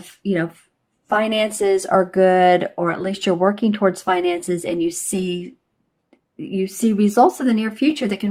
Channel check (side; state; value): both; identical; correlation 1.00